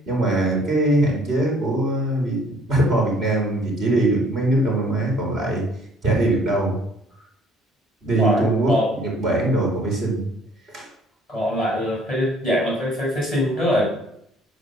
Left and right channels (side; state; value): both; normal; correlation 0.58